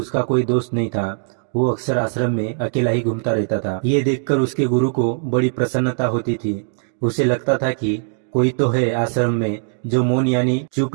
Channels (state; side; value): silent; left; digital silence